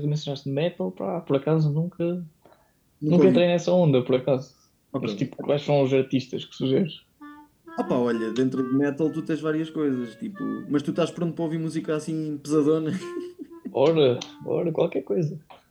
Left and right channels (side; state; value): both; identical; correlation 1.00